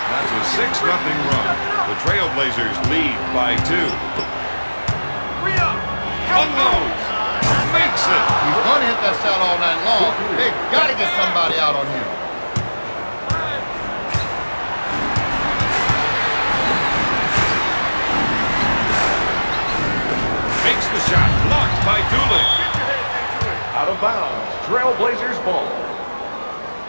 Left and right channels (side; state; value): both; inverted; correlation -1.00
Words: That's a 6-0 run. The Trailblazers lead by 2. Unloads. Makes it. He's going to hit that shot all night long. They've got to get somebody out on him. Makes the shot. Blocked by Dooling. Out of bounds, Trailblazers ball.